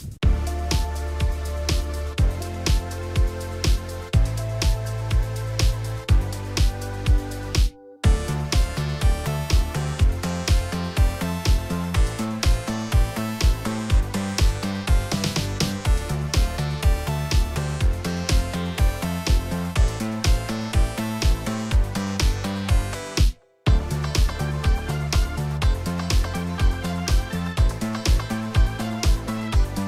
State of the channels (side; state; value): both; identical; correlation 1.00